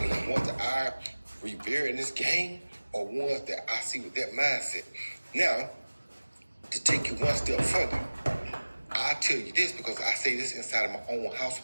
the ones that I revere in this game are ones that I see with that mindset. Now, to take you one step further, I tell you this because I say this inside of my own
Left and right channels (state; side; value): inverted; both; correlation -1.00